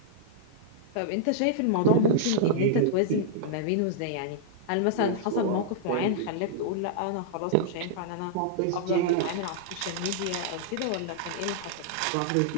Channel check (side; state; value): both; different; correlation -0.01